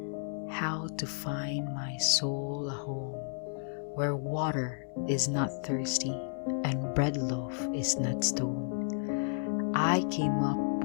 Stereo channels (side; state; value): right; silent; 56 dB below the other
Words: how to find my soul a home where water is not thirsty and bread loaf is not stone. I came up